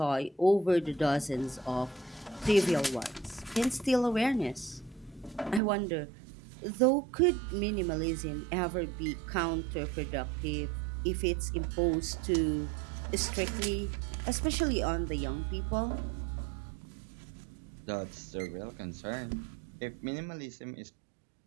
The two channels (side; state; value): left; drops out; at 5.6 s